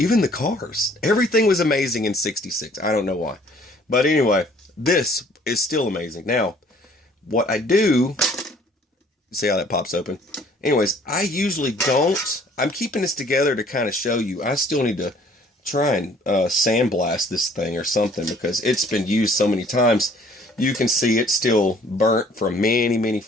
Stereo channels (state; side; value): normal; both; correlation 0.57